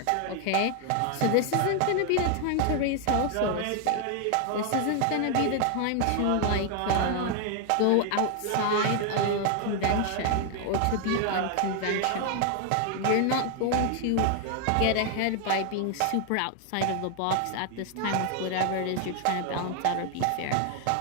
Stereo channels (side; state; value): both; different; correlation 0.00